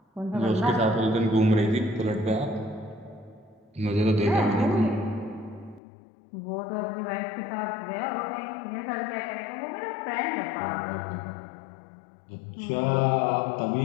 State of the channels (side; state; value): right; drops out; at 5.8 s